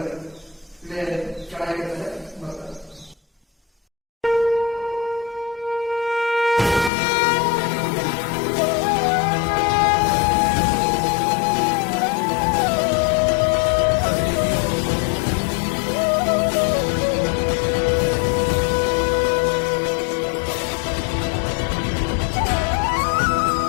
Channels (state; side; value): drops out; right; at 6.9 s